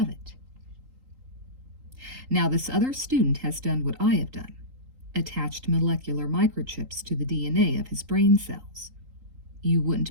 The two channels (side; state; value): left; late; 3.8 ms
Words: Now, this other student has done what I have done, attached molecular microchips to the DNA of his brain cells. You wouldn't